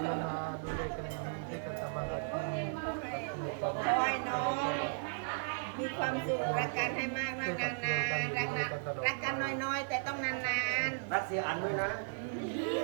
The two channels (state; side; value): silent; left; 54 dB below the other